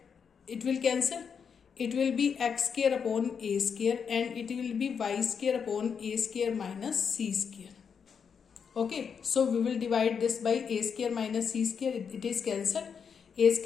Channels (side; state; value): right; quieter; 6.6 dB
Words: it will cancel, it will be x square upon a square and it will be y square upon a square minus c square. Okay, so we will divide this by a square minus c square, it is cancel. a